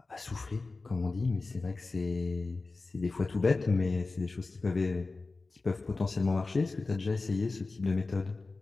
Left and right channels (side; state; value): right; quieter; 3.7 dB